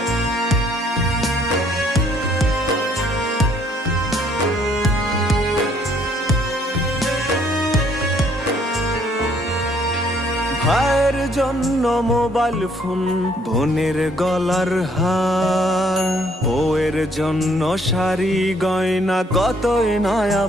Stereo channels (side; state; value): both; normal; correlation 0.65